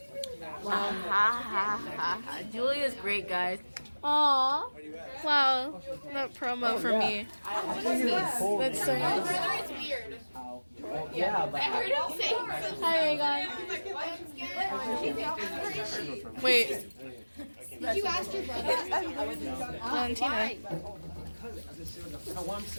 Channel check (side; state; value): both; inverted; correlation -1.00